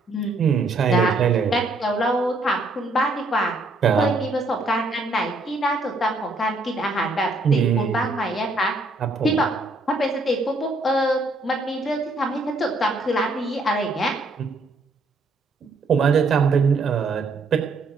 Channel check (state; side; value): quieter; left; 3.0 dB